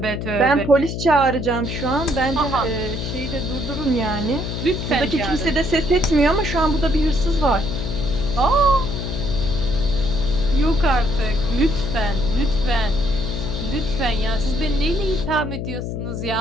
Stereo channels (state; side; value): noise; left; hum, 4 dB below the sound